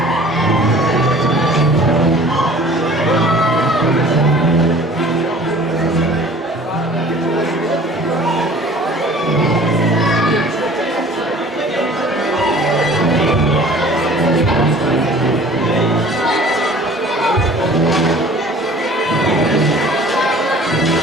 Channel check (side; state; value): both; normal; correlation 0.48